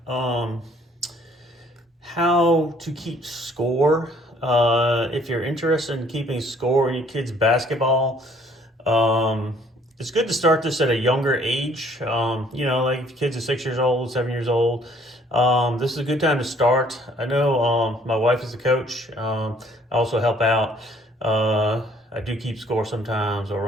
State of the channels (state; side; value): normal; both; correlation 0.60